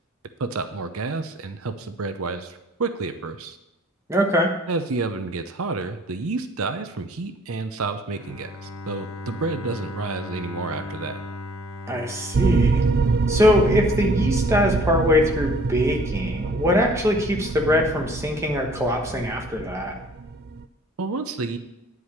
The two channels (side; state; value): both; normal; correlation 0.55